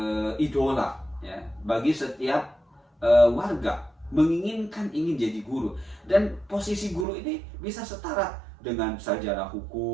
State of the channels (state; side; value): drops out; left; at 7.1 s